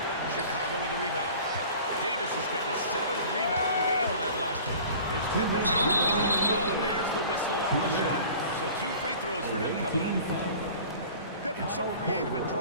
Chicago with a rebound. Davis has got his 7th rebound of the game on that last one. Here's Pippen. Oh, and there's the whistle on the shot. So 2 free throws for him coming up. Pippen's so creative at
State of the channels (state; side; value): inverted; both; correlation -0.43